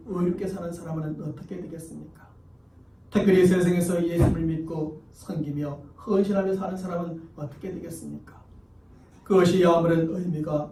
의롭게 사는 사람은 어떻게 되겠습니까? 특별히 세상에서 예수를 믿고 섬기며 헌신하며 사는 사람은 어떻게 되겠습니까? 그것이 아무런 의미가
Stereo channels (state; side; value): identical; both; correlation 1.00